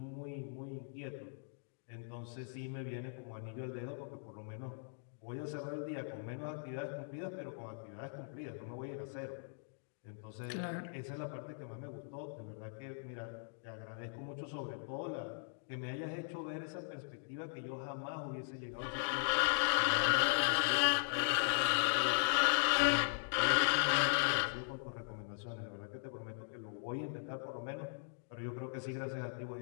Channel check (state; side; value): silent; right; digital silence